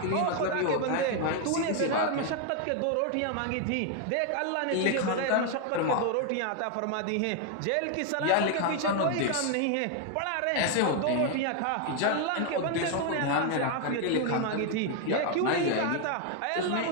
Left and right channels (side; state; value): both; different; correlation 0.01